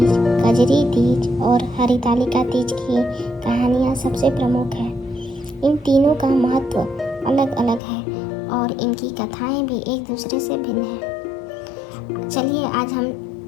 कजरी तीज और हरितालिका तीज की कहानियां सबसे प्रमुख हैं। इन तीनों का महत्व अलग अलग है और इनकी कथाएं भी एक दूसरे से भिन्न हैं। चलिए आज हम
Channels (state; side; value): drops out; right; at 7.8 s